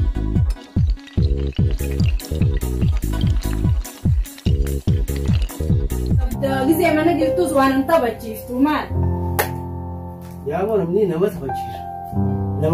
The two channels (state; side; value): identical; both; correlation 1.00